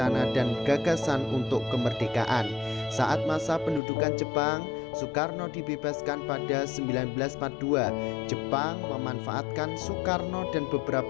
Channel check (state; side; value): drops out; right; at 3.8 s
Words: dan gagasan untuk kemerdekaan. Saat masa pendudukan Jepang, Soekarno dibebaskan pada 1942. Jepang memanfaatkan Soekarno dan